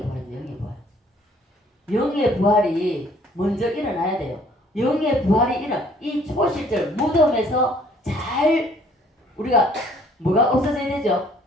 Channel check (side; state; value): both; normal; correlation 0.59